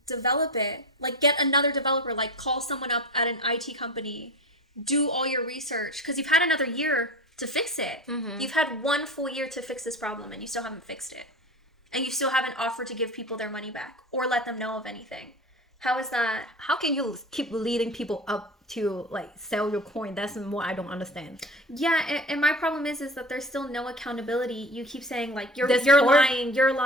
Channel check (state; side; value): normal; both; correlation 0.32